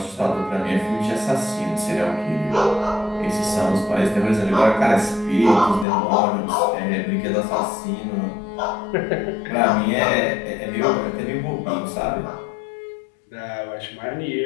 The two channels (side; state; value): right; drops out; at 5.9 s